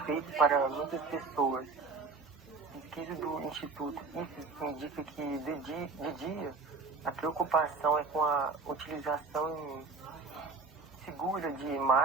para muitas pessoas. Pesquisa do Instituto IFES indica que de dia a preocupação é com a utilização segura de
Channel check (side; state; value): left; quieter; 4.2 dB